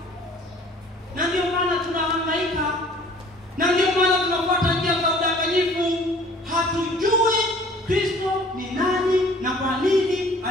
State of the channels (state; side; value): normal; both; correlation 0.52